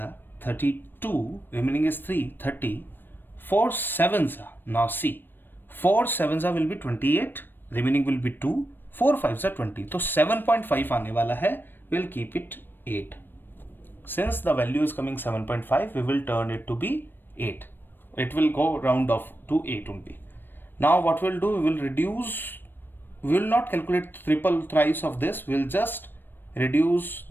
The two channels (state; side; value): late; right; 0.095 ms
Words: are 32, remaining is 3, 30. 4 7s are, now see, 4 7s are will be 28, remaining will be 2, 4 5s are 20. So 7.5 आने वाला है, we'll keep it 8. Since the value is coming 7.5, we will turn it to be 8. It will go round off to 8 only. Now what we'll do, we will reduce, we will not calculate triple thrice of this, we'll just reduce